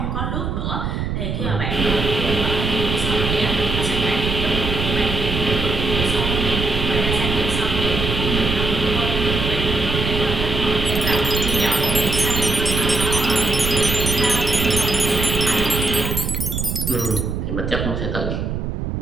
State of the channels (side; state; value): right; noise; rumble, 2 dB below the sound